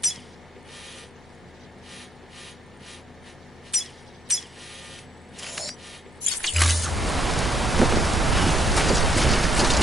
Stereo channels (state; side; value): normal; both; correlation 0.73